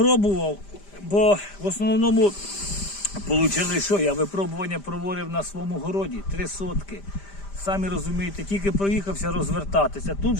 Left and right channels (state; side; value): late; right; 5.0 ms